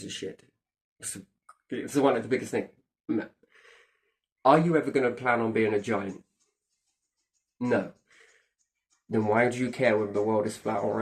a shit? It's one of the biggest things. Are you ever going to plan on being a giant? No. Then why do you care whether the world is flat or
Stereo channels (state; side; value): identical; both; correlation 1.00